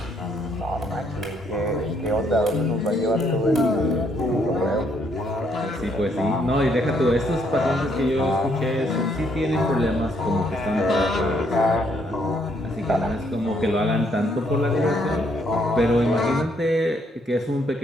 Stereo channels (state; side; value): normal; both; correlation 0.71